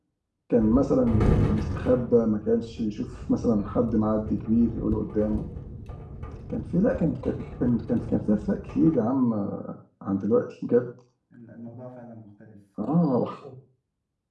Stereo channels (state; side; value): identical; both; correlation 1.00